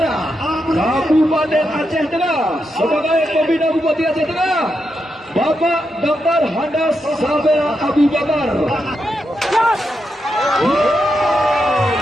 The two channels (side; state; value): both; normal; correlation 0.84